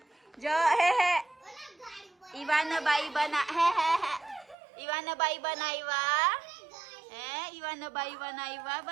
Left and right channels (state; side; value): drops out; left; at 4.5 s